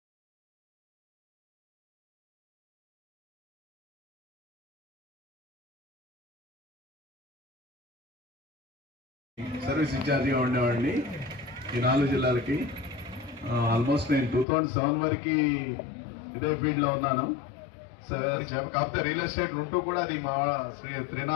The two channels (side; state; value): right; drops out; at 14.5 s